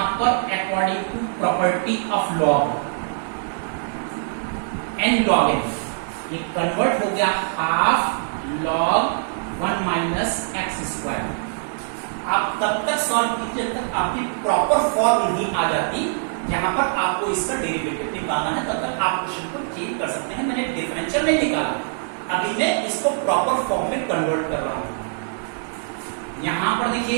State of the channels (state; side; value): silent; left; digital silence